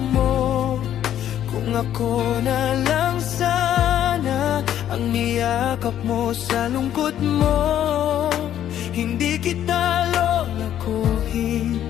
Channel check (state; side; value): quieter; right; 11.0 dB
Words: mo, kung ako na lang sana ang niyakap mo sa lungkot mo, hindi kita lolakuhin,